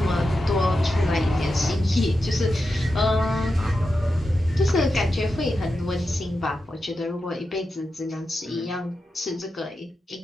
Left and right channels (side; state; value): both; normal; correlation 0.89